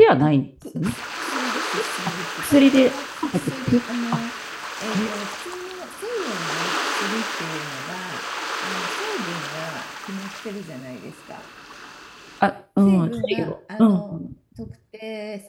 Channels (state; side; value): identical; both; correlation 1.00